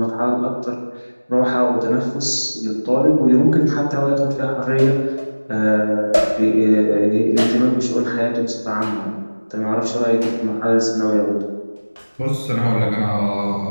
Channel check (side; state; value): both; inverted; correlation -1.00